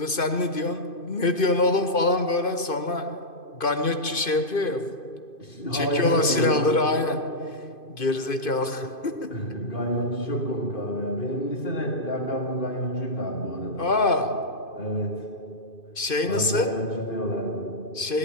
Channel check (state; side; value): late; right; 2.5 ms